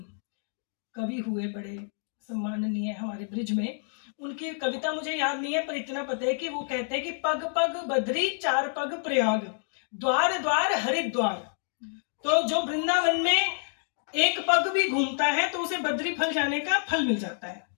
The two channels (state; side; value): silent; right; digital silence